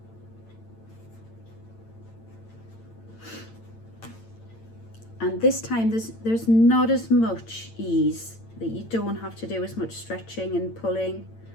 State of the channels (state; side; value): late; right; 8.9 ms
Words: And this time there's not as much ease, that you don't have to do as much stretching and pulling